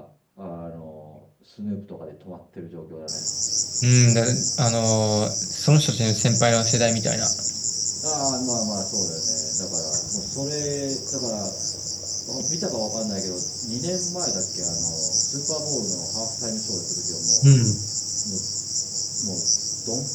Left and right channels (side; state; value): both; identical; correlation 1.00